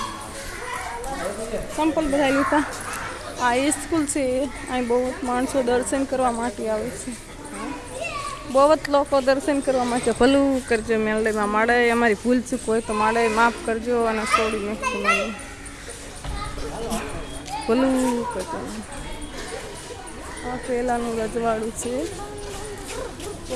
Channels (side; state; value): both; identical; correlation 1.00